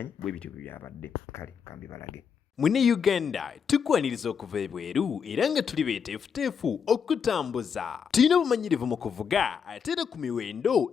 bwe bityo byabadde. Kale kambibalage. Mune Uganda tukwaniriza okuva ebweru era nga tuli beeteefuteefu okutambuza. Tulina obumanyirivu mu kuvuga ate era ku miwendo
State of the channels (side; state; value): right; quieter; 6.9 dB